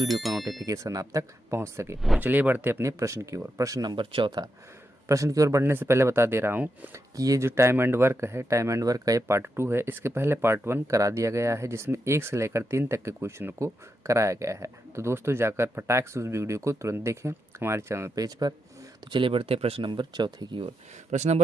का नोटिफिकेशन आप तक पहुँच सके। तो चलिए बढ़ते अपने प्रश्न की ओर। प्रश्न नंबर चौथा। प्रश्न की ओर बढ़ने से पहले बता दे रहा हूँ कि ये जो टाइम एंड वर्क है, टाइम एंड वर्क का ये पार्ट 2 है। इसके पहले पार्ट 1 करा दिया गया है, जिसमें 1 से लेकर 3 तक के क्वेश्चन को कराया गया है। तो दोस्तों, जाकर फटाक से उस वीडियो को तुरंत देखें हमारे चैनल पेज पर। तो चलिए बढ़ते हैं प्रश्न नंबर चौथे की ओर। प्रश्न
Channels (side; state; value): both; normal; correlation 0.85